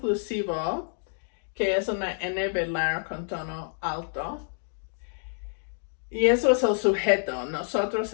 que es una N velar con tono alto. Y eso es el sujeto. Nosotros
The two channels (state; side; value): silent; right; digital silence